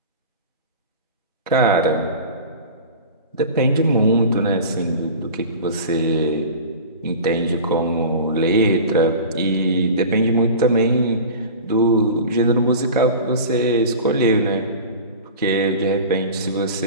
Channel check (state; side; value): inverted; both; correlation -0.35